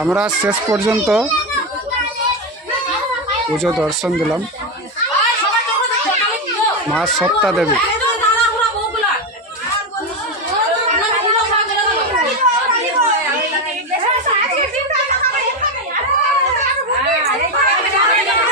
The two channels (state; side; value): normal; both; correlation 0.11